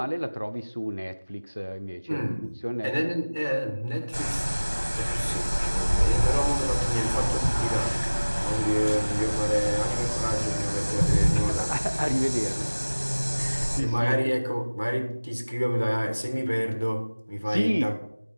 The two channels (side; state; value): both; inverted; correlation -1.00